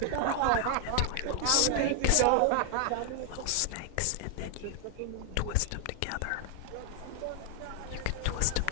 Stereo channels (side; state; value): both; different; correlation 0.00